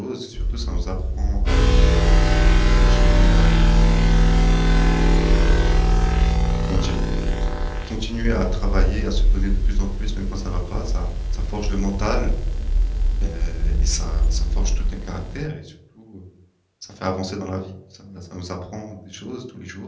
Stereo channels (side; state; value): both; identical; correlation 1.00